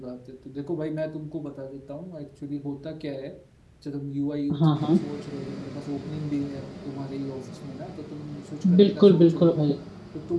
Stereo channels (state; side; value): identical; both; correlation 1.00